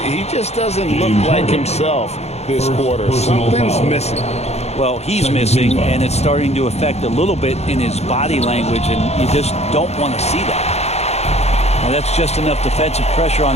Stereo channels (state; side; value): late; right; 0.31 ms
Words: He just doesn't look like himself this quarter. Something's missing. Well, he's missing, and it's starting to affect a little bit in his body language, and you just don't want to see that. Now, that's just enough defensive pressure